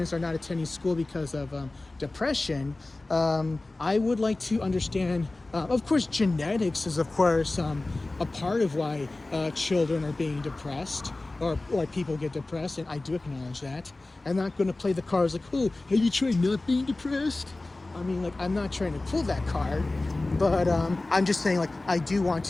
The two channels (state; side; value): quieter; right; 3.0 dB